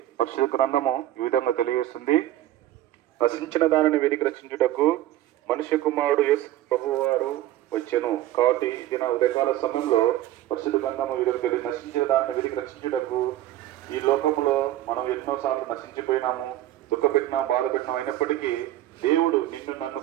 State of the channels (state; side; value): quieter; left; 13.9 dB